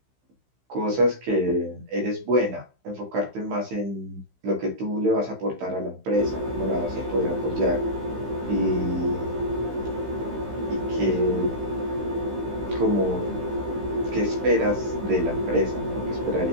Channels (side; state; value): left; late; 15 ms